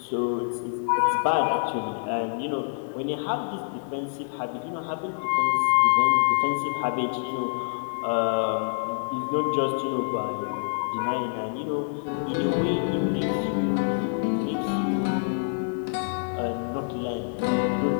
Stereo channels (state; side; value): silent; right; digital silence